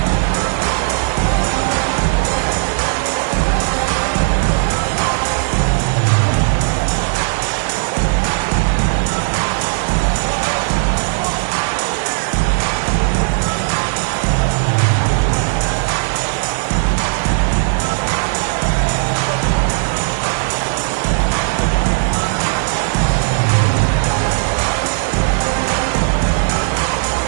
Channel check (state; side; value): silent; left; digital silence